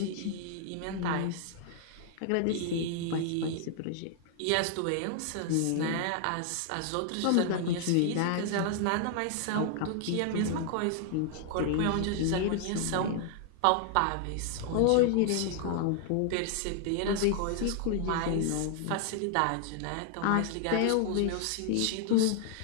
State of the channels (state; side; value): different; both; correlation 0.00